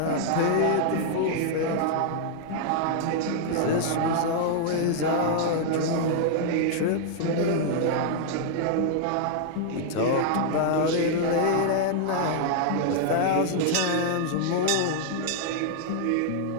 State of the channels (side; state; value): both; different; correlation -0.01